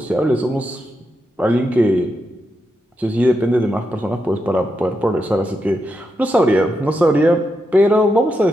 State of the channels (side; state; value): both; normal; correlation 0.85